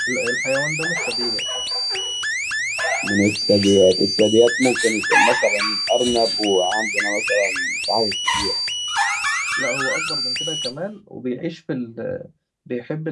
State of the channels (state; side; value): identical; both; correlation 1.00